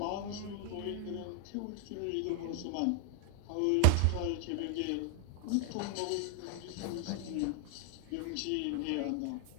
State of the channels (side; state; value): both; different; correlation 0.01